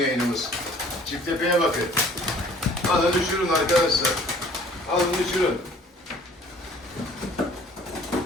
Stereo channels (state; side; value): normal; both; correlation 0.53